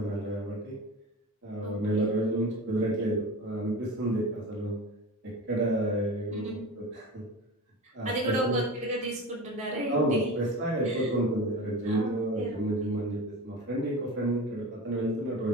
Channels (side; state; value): both; normal; correlation 0.31